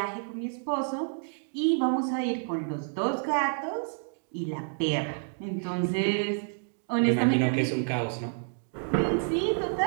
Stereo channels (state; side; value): silent; left; 59 dB below the other